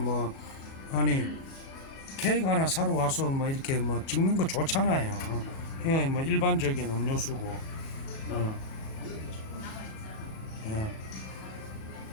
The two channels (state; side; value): late; right; 37 ms